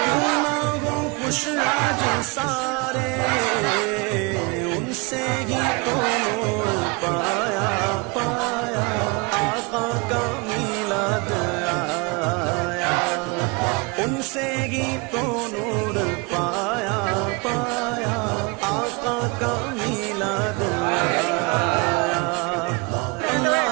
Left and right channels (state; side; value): quieter; left; 28.4 dB